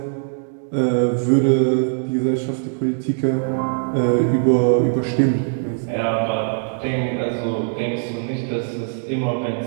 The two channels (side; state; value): left; silent; digital silence